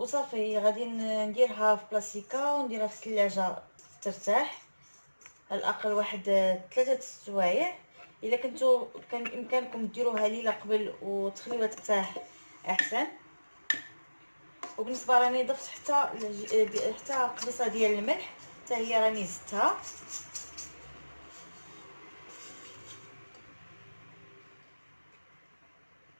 غادي نديرها في بلاصيكا ونديرها في الثلاجه ترتاح على الاقل واحد 3 سوايع. الا كنتو كان بامكانكم ديروها ليله قبل وتخليوها ترتاح احسن. وبالنسبه راني ضفت حتى قبيصه ديال الملح حتى هي راني زدتها.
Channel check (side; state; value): both; inverted; correlation -1.00